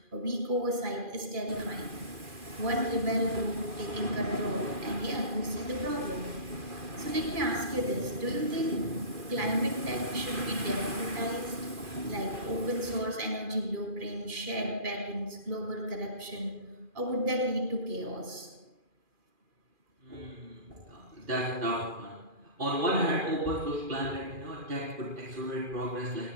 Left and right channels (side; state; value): left; late; 2.4 ms